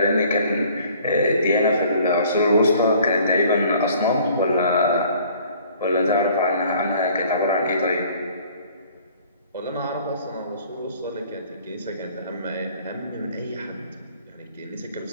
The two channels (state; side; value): inverted; both; correlation -0.55